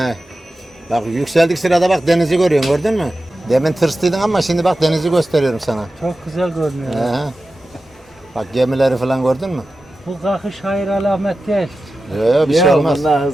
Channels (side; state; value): both; normal; correlation 0.93